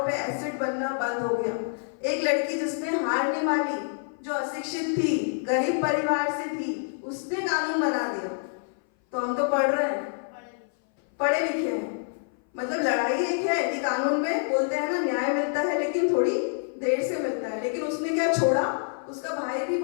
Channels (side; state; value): right; silent; 58 dB below the other